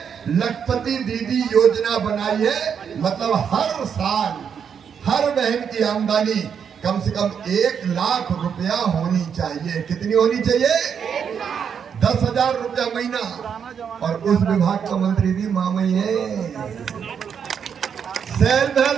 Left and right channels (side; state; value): left; quieter; 7.4 dB